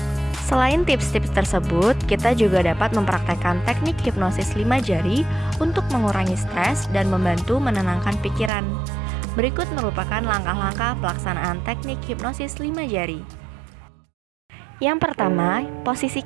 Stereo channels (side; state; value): left; drops out; at 8.5 s